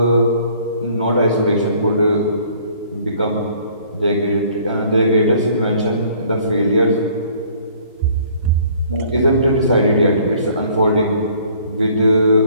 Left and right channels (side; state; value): both; inverted; correlation -0.57